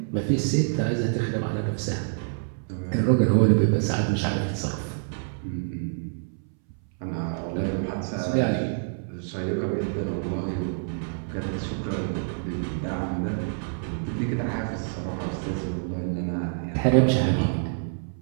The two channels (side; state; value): left; silent; 60 dB below the other